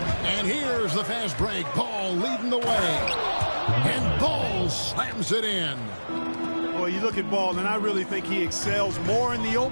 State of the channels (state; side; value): inverted; both; correlation -1.00